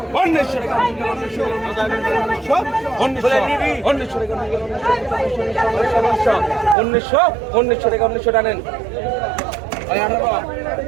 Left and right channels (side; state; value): left; drops out; at 6.8 s